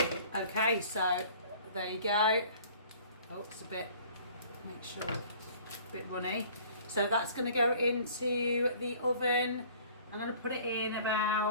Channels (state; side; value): inverted; both; correlation -0.50